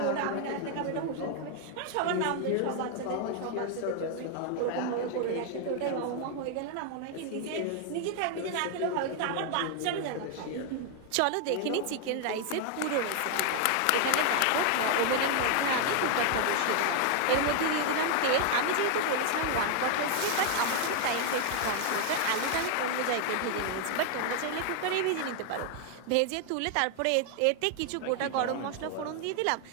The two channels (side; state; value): both; different; correlation 0.00